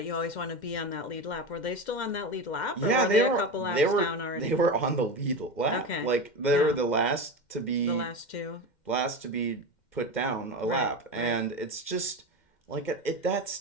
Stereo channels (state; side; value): late; right; 2.1 ms